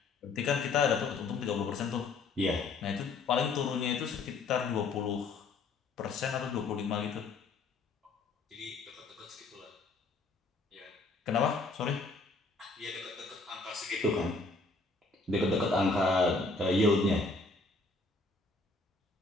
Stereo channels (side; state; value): right; quieter; 3.7 dB